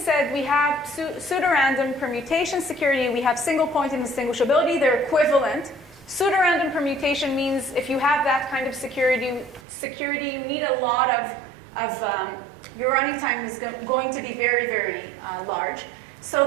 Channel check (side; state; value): left; drops out; at 9.6 s